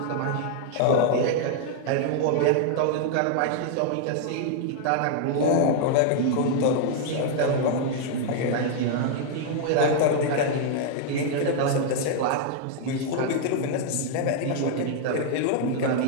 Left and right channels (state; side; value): different; both; correlation 0.00